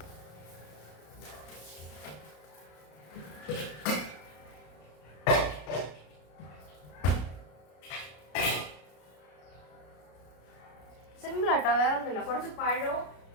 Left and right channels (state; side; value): late; right; 33 ms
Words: സിമ്പിൾ ആട്ടോ, വേറെ ഒന്നുമില്ല. കുറച്ച് പഴവും